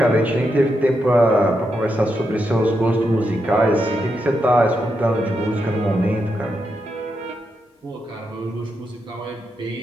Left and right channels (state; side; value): normal; both; correlation 0.84